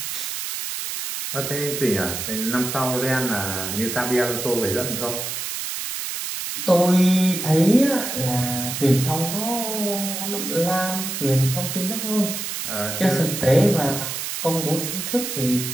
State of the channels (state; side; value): noise; right; hiss, 5 dB below the sound